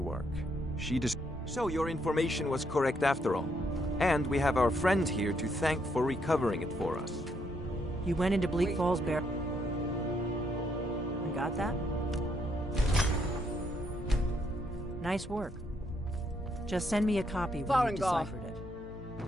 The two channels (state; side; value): normal; both; correlation 0.74